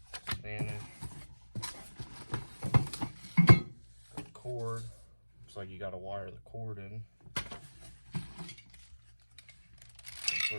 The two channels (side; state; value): both; inverted; correlation -1.00